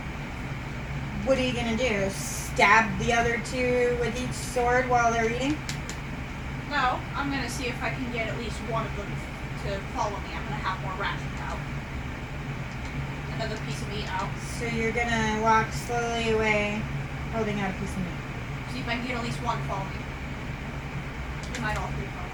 What are you gonna do? Stab the other two with each sword while they're eating? No, I'm gonna see if I can get at least one of them to follow me. I'm gonna have more rations out. Another piece of meat out. So you're gonna walk slowly away, holding out a piece of meat. See if I can get at least one to follow me. We might all three follow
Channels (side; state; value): both; identical; correlation 1.00